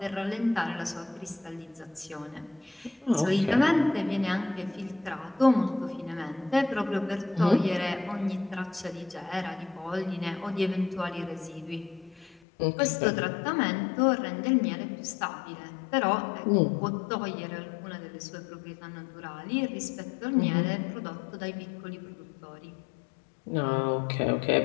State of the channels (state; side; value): drops out; right; at 12.4 s